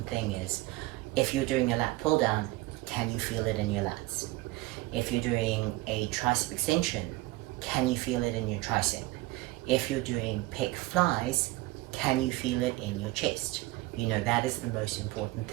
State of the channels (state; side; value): quieter; left; 19.1 dB